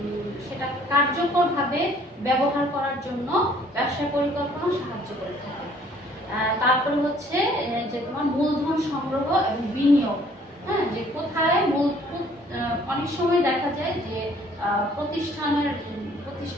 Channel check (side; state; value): both; normal; correlation 0.58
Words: সেটা কার্যকরভাবে ব্যবহার করার জন্য ব্যবসা পরিকল্পনা সাহায্য করে থাকে। তারপরে হচ্ছে যে তোমার মূলধন সংগ্রহ এবং বিনিয়োগ। হ্যাঁ, যে কোথায় অনেক সময় দেখা যায় যে